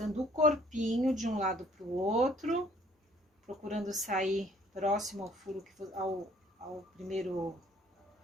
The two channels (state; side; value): normal; both; correlation 0.59